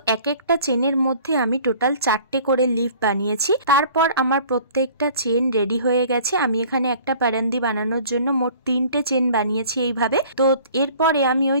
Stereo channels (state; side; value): inverted; both; correlation -0.50